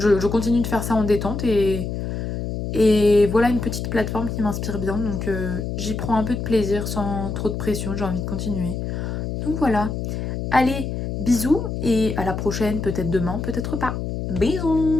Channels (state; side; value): noise; left; hum, 4 dB below the sound